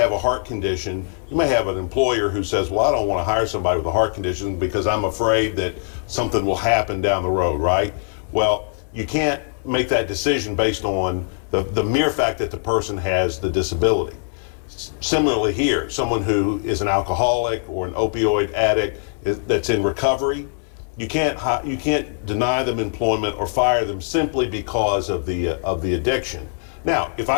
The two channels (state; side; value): silent; right; 62 dB below the other